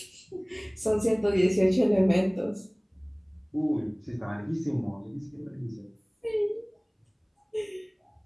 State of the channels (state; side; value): identical; both; correlation 1.00